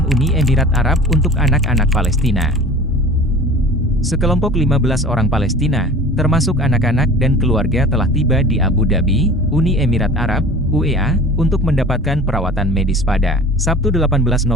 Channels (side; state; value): both; normal; correlation 0.40